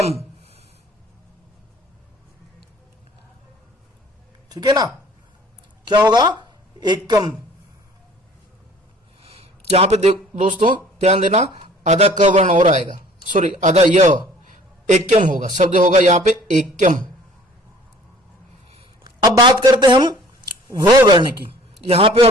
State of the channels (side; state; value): both; normal; correlation 0.52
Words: ठीक है ना, क्या होगा एकम। यहां पे दोस्तों ध्यान देना आधा क वर्ण और आएगा, सॉरी आधा य, एकम होगा, शब्द होगा यहां पे एकम। अब बात करते हम व वर्ण की, यहां पे